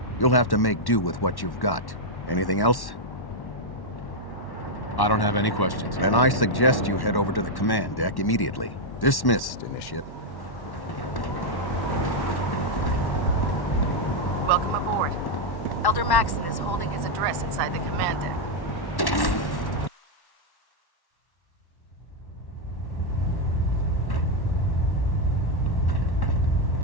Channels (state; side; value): late; right; 1.1 ms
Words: you'll have to make do with what you've got. Anything else? I don't have any questions. Then I suggest you head over to the command deck immediately. Dismissed, Initiate. Welcome aboard. Elder Maxson is holding his address inside the command deck.